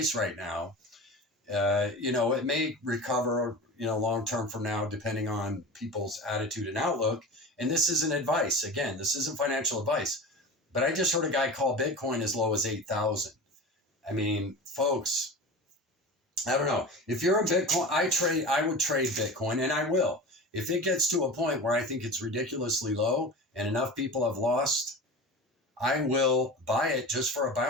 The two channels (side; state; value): both; normal; correlation 0.32